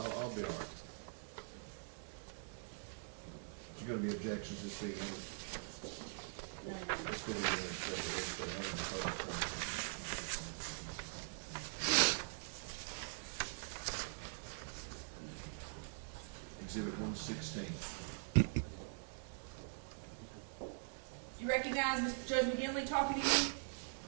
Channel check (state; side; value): silent; left; digital silence